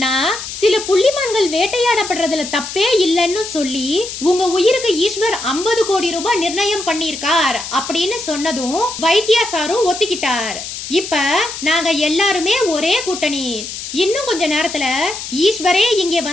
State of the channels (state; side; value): noise; left; hiss, 8 dB below the sound